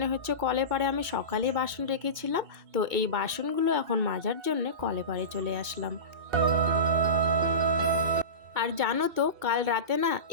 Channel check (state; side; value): late; left; 2.7 ms